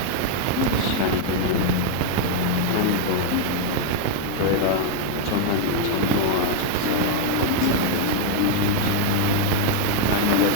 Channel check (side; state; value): both; different; correlation 0.00